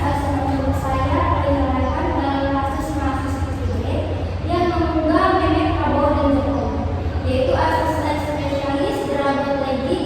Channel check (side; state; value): both; identical; correlation 1.00